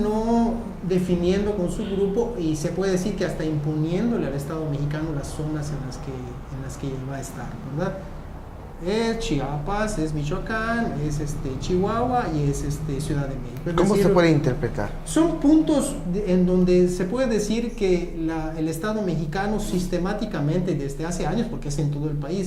definiendo con su grupo y se puede decir que hasta imponiéndole al Estado mexicano las zonas en las que va a estar, ¿verdad? Es Chiapas, es Michoacán, es Chihuahua y es Ciudad de México. ¿Cómo se puede interpretar? Son puntos en donde se puede decir que el Estado mexicano sistemáticamente desde hace años, porque es en todo el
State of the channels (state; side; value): identical; both; correlation 1.00